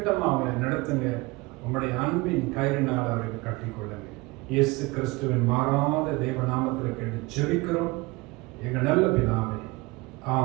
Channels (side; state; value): left; quieter; 23.3 dB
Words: அவங்களை நடத்துங்க. உங்களுடைய அன்பின் கயிறினால் அவர்கள் கட்டிக்கொள்ளுங்க. இயேசு கிறிஸ்துவின் மாறாத தேவ நாமத்தில் கேட்டு ஜெபிக்கிறோம் எங்கள் நல்ல பிதாவே.